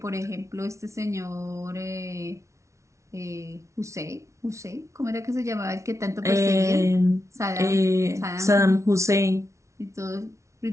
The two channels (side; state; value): left; late; 0.14 ms